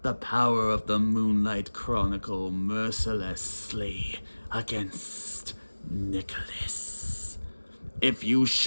the power of the Moonlight Chronicle mercilessly against Nicholas. If you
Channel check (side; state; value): both; inverted; correlation -1.00